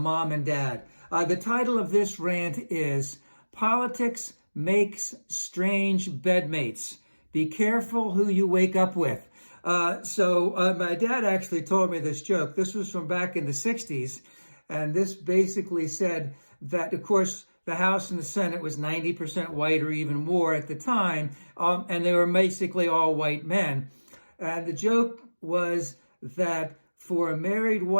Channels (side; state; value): both; inverted; correlation -1.00